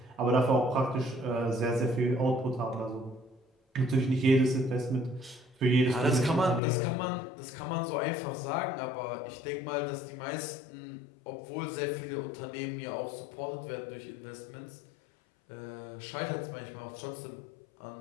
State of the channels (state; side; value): drops out; right; at 6.6 s